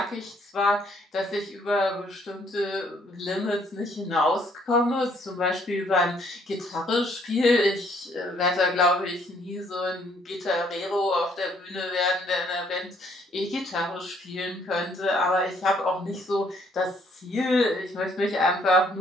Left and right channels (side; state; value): both; normal; correlation 0.65